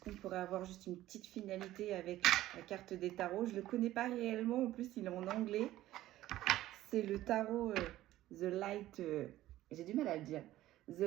pourrait avoir juste une petite finalité avec la carte des tarots? Je ne le connais pas réellement, en plus il est en anglais. C'est le tarot The Light, j'ai du mal à le dire, The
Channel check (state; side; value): quieter; left; 14.9 dB